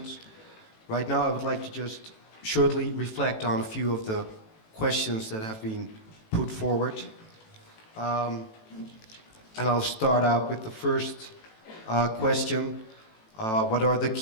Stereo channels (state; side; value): late; right; 18 ms